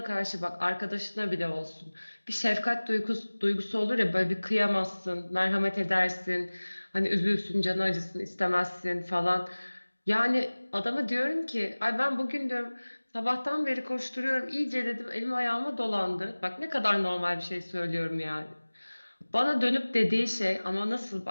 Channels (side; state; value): both; inverted; correlation -1.00